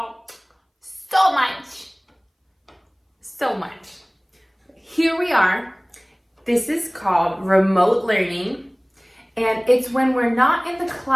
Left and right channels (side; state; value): both; identical; correlation 1.00